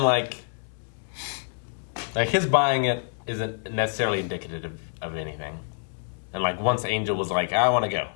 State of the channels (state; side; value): silent; right; digital silence